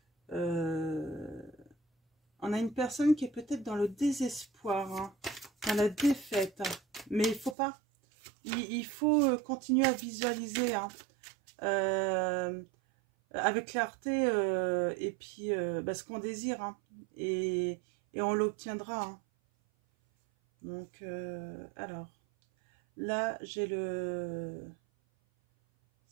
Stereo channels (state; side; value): drops out; left; at 7.6 s